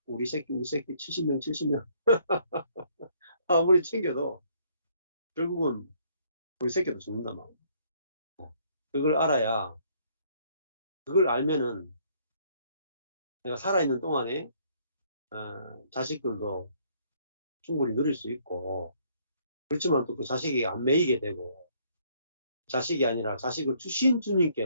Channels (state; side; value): inverted; both; correlation -0.65